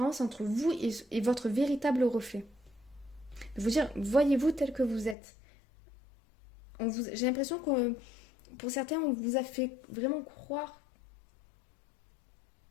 entre vous et votre véritable reflet. De vous dire, voyez-vous tel que vous êtes. J'ai l'impression que pour certains, on vous a fait vraiment croire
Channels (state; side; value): drops out; right; at 5.2 s